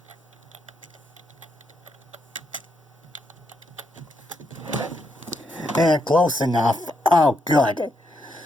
Close enough. Oh, good.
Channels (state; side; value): normal; both; correlation 0.79